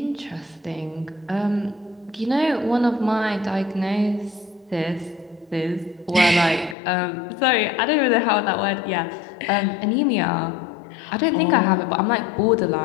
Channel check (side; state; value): right; drops out; at 6.8 s